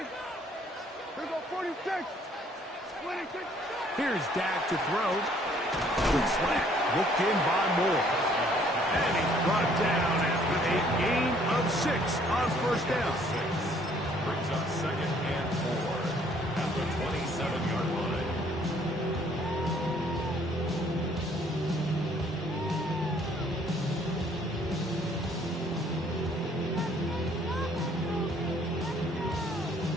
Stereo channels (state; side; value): normal; both; correlation 0.62